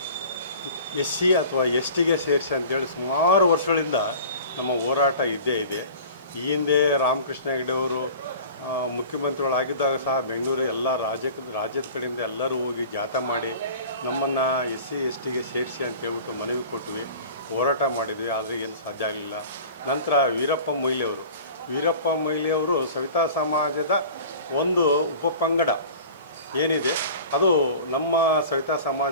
ಎಸ್ ಸಿ ಅಥವಾ ಎಸ್ ಟಿಗೆ ಸೇರಿಸಿ ಅಂತೇಳಿ ಸುಮಾರು ವರ್ಷಗಳಿಂದ ನಮ್ಮ ಹೋರಾಟ ಇದ್ದೇ ಇದೆ. ಈ ಹಿಂದೆ ರಾಮಕೃಷ್ಣ ಹೆಗಡೆ ಅವರು ಮುಖ್ಯಮಂತ್ರಿಗಳಾಗಿದ್ದಾಗ ಸಹ ಬೆಂಗಳೂರು ಎಲ್ಲ ರಾಜ್ಯದ ಕಡೆಯಿಂದ ಎಲ್ಲರೂ ಹೋಗಿ ಜಾಥಾ ಮಾಡಿ ನಮ್ಮನ್ನು ಎಸ್ ಸಿ ಎಸ್ ಟಿಗೆ ಸೇರಿಸಿ ಅಂತೇಳ್ಬಿಟ್ಟು ಮನವಿ ಕೊಟ್ವಿ, ಹೋರಾಟ ಮಾಡಿದ್ವಿ. ಆದರೆ ಏನು ಸಾಧ್ಯ ಆಗಲಿಲ್ಲ. ನಂತರ ವೀರಪ್ಪ ಮೊಯ್ಲಿಯವರು ಸವಿತಾ ಸಮಾಜದ ಒಂದು ಉಪಪಂಗಡ ಏನಿದೆ ಅದು ನಮ್ಮ ಸವಿತಾ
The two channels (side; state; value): both; inverted; correlation -0.41